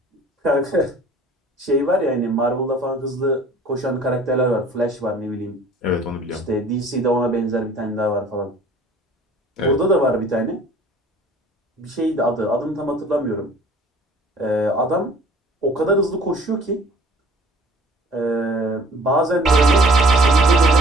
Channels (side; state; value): both; normal; correlation 0.51